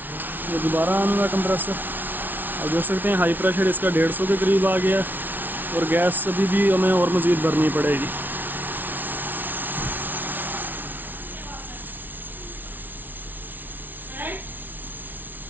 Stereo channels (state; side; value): late; left; 0.087 ms